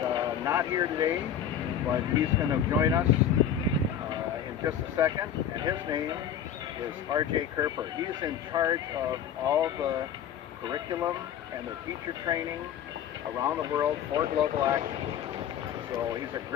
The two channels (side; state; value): right; quieter; 9.0 dB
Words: not here today, but he's going to join us in just a second, and his name is R.J. Kerper. He's in charge of all the curriculum and the teacher training around the world for Global Action. So he's a